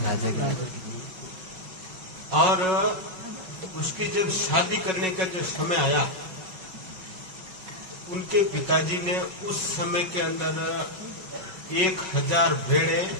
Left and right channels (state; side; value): late; left; 5.4 ms